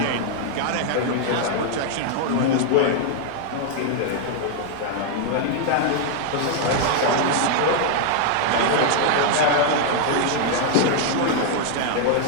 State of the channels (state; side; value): different; both; correlation 0.00